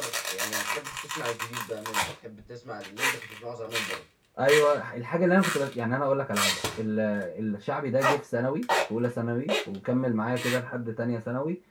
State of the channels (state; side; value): identical; both; correlation 1.00